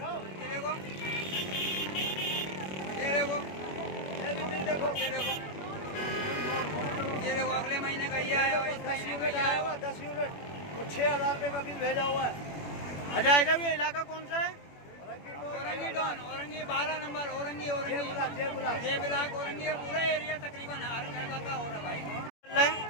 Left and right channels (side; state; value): right; late; 21 ms